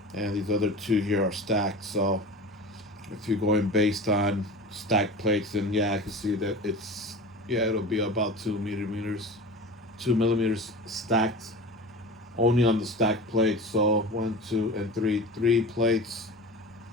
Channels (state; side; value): normal; both; correlation 0.34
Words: And these other 2 here are stacked. So if you're going based on stacked plates, then yeah, I can see that it'll be about 2 millimeters stacked, only on the stacked plates. So 1, 2, and 3 plates